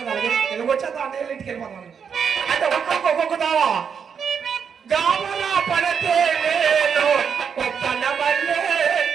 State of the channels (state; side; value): quieter; left; 6.9 dB